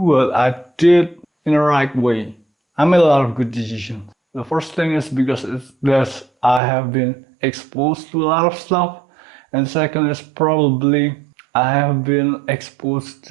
I did in the right way. I made a lot of good decisions. The first thing is because I have been exposed to a lot of stuff, and second is probably I have been exposed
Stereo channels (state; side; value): drops out; left; at 6.6 s